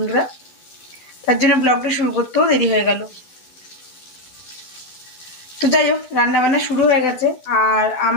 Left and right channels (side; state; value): right; late; 12 ms